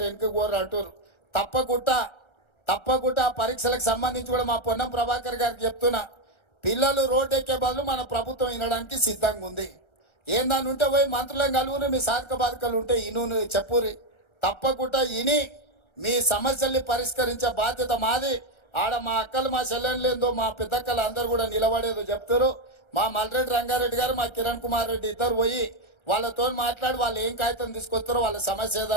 వెనుక కోరు అంటారు. తప్పకుండా పరీక్షలకు సంబంధించి కూడా మా పొన్నం ప్రభాకర్ గారికి చెప్తున్నా, పిల్లలు రోడ్డు ఎక్కే బదులు మన ప్రభుత్వం వినడానికి సిద్ధంగా ఉంది. ఏందని ఉంటే పోయి మంత్రులను కలువుని, మీ సాధక బాధకాలు ఉంటే ఇను చెప్పురి. తప్పకుండా ఇని మీ సమస్యల్ని పరిష్కరించే బాధ్యత మాది. ఆడ మా అక్కలు, మా చెల్లెళ్ళేందో, మా పెద్దక్కలు అందరూ కూడా నిలబడేదో చెప్తారు. మా మల్రెడ్డి రంగారెడ్డి గారు, మా కిరణ్ కుమార్ రెడ్డి ఇద్దరు పోయి వాళ్ళతో మాట్లాడి వాళ్ళు ఏం కాగితం తీసుకొస్తారో, వాళ్ళ సమస్య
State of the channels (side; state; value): right; late; 1.3 ms